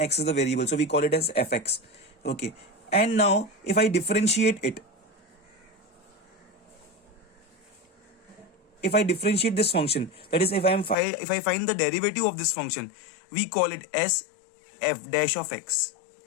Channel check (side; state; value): right; drops out; at 11.0 s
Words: x is the variable, so we call it as fx. Okay, and now if I differentiate it, if I differentiate this function, that is if I find the derivative of this function, we call it as f dash of x.